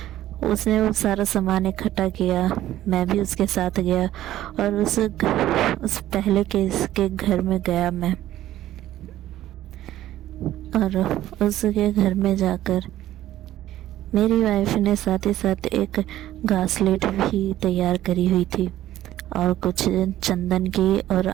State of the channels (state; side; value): quieter; left; 13.6 dB